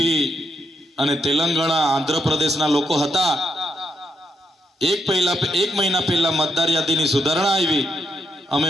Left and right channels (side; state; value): both; normal; correlation 0.80